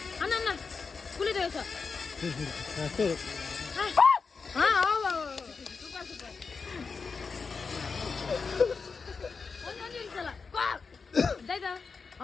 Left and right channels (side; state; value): right; quieter; 5.0 dB